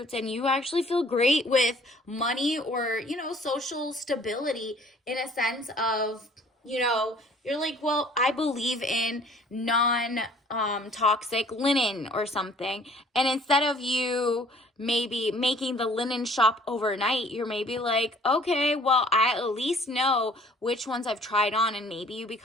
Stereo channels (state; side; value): normal; both; correlation 0.55